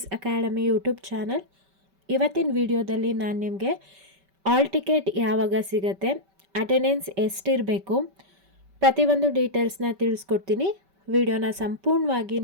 academy YouTube channel. ಇವತ್ತಿನ ವಿಡಿಯೋದಲ್ಲಿ ನಾನು ನಿಮಗೆ ಆಲ್ ಟಿಕೆಟ್ ಯಾವಾಗ ಸಿಗುತ್ತೆ, ಅಟೆಂಡೆನ್ಸ್ ಎಷ್ಟಿರಬೇಕು, ಪ್ರತಿಯೊಂದು ಡೀಟೇಲ್ಸ್ನ ತಿಳಿಸ್ಕೊಡ್ತೀನಿ. ವಿಡಿಯೋನ ಸಂಪೂರ್ಣವಾಗಿ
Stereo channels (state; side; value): late; left; 5.2 ms